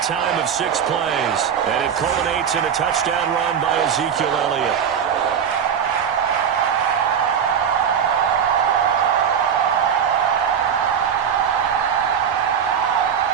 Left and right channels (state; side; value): quieter; left; 7.8 dB